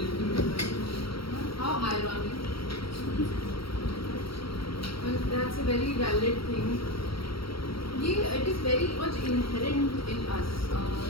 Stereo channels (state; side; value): late; right; 0.75 ms